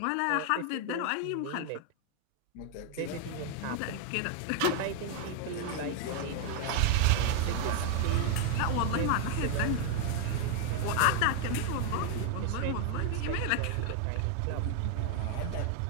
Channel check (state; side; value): different; both; correlation 0.00